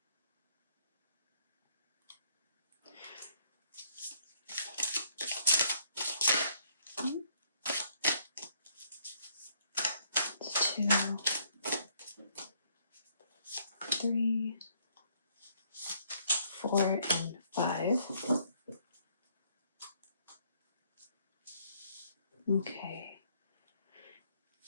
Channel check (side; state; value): both; inverted; correlation -0.67